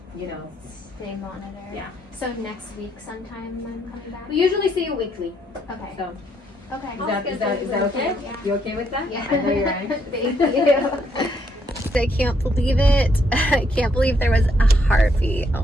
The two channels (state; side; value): normal; both; correlation 0.73